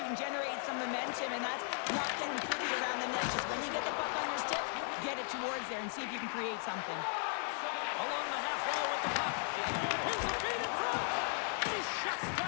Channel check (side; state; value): right; silent; 53 dB below the other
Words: and generate some momentum, and that's not getting pretty around the net. Just when you get the puck on your stick, get it towards there and see if you can create something. Along the half wall with the puck. Here's the feed in front. He shuts